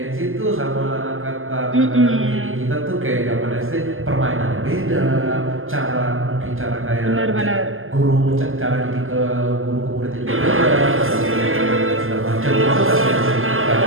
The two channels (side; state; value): left; late; 0.60 ms